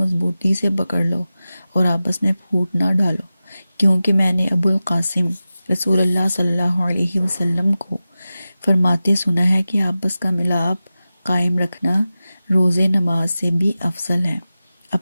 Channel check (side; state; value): both; inverted; correlation -0.95